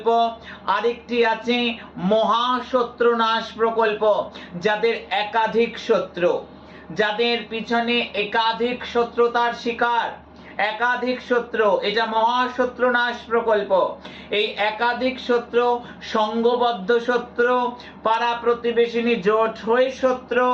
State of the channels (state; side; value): identical; both; correlation 1.00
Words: আরেকটি আছে মহাশত্রুনাশ প্রকল্প। যাদের একাধিক শত্রু, যাদের পিছনে একাধিক শত্রুতার শিকার, একাধিক শত্রু, এটা মহাশত্রুনাশ প্রকল্প। এই একাধিক শত্রু, সংঘবদ্ধ শত্রু, পাড়া প্রতিবেশিনী জোট হয়ে শত্রু,